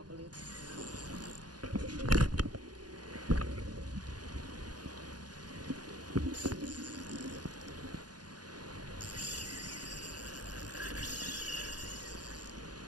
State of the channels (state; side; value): late; left; 0.69 ms